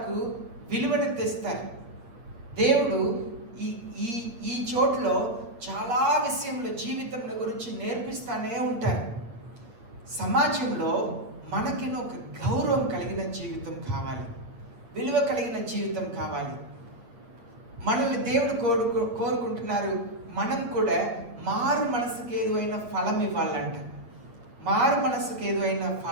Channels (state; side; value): late; left; 8.6 ms